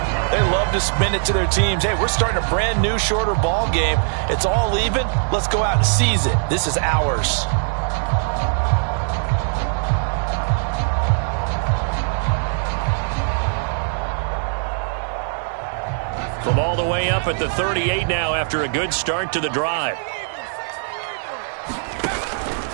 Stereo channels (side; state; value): left; silent; 65 dB below the other